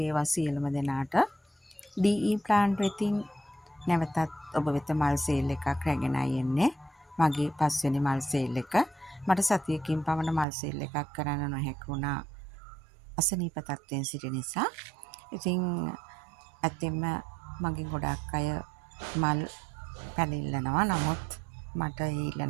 සියලුම දෙනාට. DE ප්ලාන්ට් වෙතින් නැවතත් ඔබ වෙත මල් සේල් එකක් රැගෙනයි එන්නේ. මගේ 5 වෙනි මල් සේල් එක. මට සතියකින් පමණ මල් සේල් එකක් කරන්න නොහැකි වුණා. අසනීප තත්ත්වයෙන් සිටි නිසා. ඉතින් ඇත්තෙන්ම මගේ ගොඩක් අය මල් පැල ඉල්ලනවා. නමුත් මට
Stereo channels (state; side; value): drops out; left; at 10.5 s